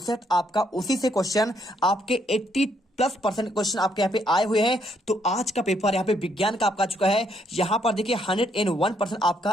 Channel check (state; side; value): normal; both; correlation 0.72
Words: सेट आपका, उसी से क्वेश्चन आपके 80+% क्वेश्चन आपके यहाँ पे आए हुए हैं। तो आज का पेपर यहाँ पे विज्ञान का आपका आ चुका है। यहाँ पर देखिए 101% आपका